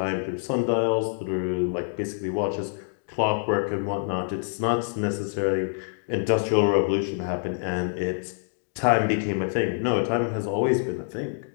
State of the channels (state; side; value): silent; right; digital silence